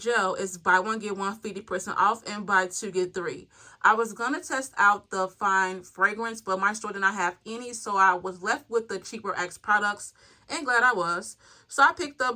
is buy 1 get 1 50% off and buy 2 get 3. I was gonna test out the fine fragrance, but my store did not have any, so I was left with the cheaper Axe products, and glad I was. So I picked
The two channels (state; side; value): identical; both; correlation 1.00